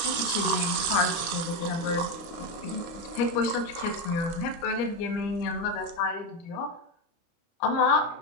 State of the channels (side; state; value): right; late; 29 ms